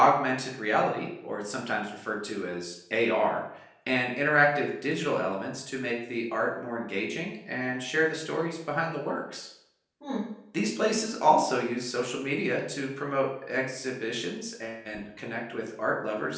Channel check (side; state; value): both; identical; correlation 1.00